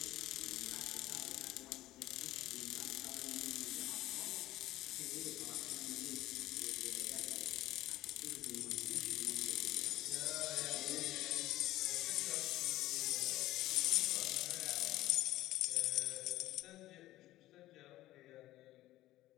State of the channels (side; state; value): right; quieter; 15.8 dB